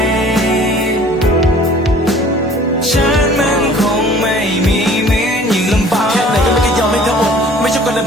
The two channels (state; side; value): normal; both; correlation 0.50